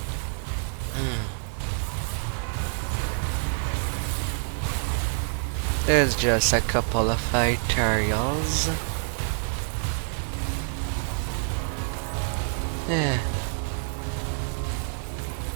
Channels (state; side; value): silent; left; digital silence